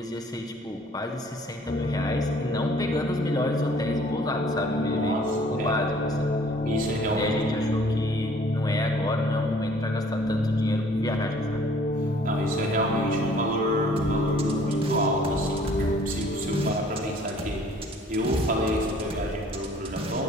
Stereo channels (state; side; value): normal; both; correlation 0.56